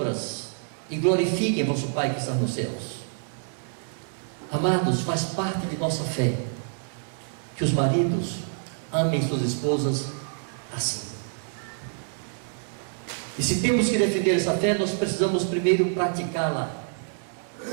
e glorifiquem vosso Pai que está nos céus. Amados, faz parte de nossa fé que os maridos amem suas esposas assim. E se temos que defender essa fé, nós precisamos primeiro praticá-la.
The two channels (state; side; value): silent; left; 60 dB below the other